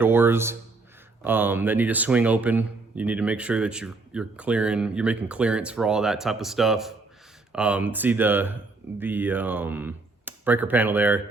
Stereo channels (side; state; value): left; quieter; 3.6 dB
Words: that need to swing open, you need to make sure that you're making clearance for all that type of stuff. See the breaker panel there.